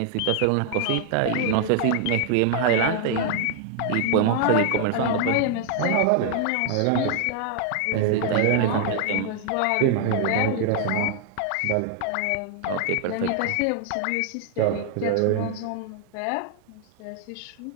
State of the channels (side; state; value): both; different; correlation 0.00